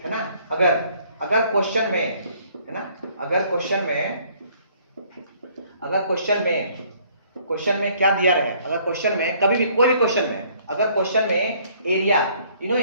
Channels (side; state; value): both; inverted; correlation -0.61